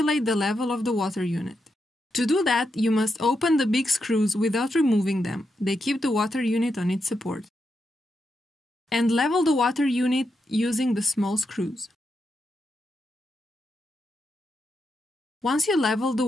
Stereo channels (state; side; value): normal; both; correlation 0.84